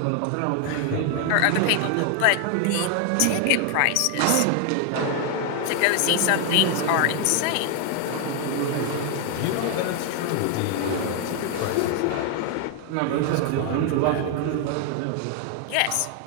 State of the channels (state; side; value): different; both; correlation 0.01